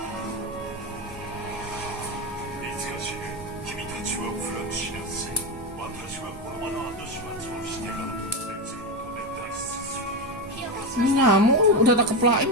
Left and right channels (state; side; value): normal; both; correlation 0.14